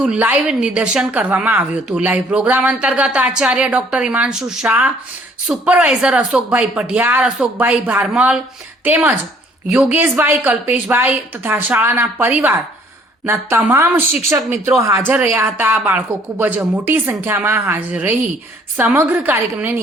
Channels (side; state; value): both; normal; correlation 0.60